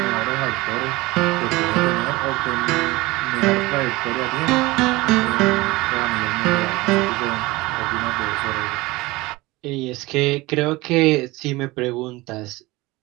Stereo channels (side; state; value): left; quieter; 21.1 dB